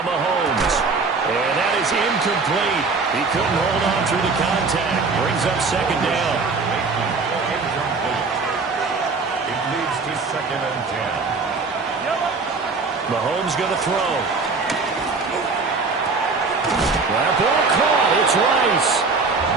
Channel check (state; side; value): quieter; left; 4.3 dB